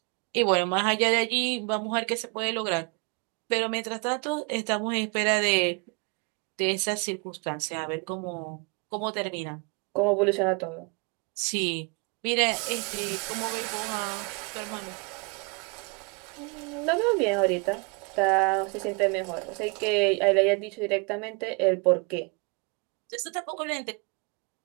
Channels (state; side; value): quieter; left; 32.7 dB